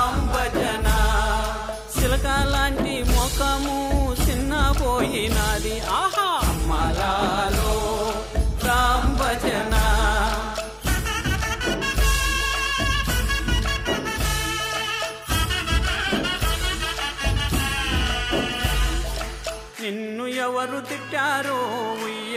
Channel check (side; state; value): both; identical; correlation 1.00